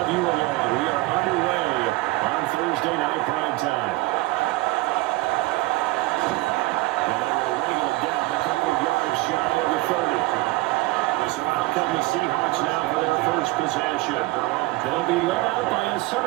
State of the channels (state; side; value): quieter; left; 20.3 dB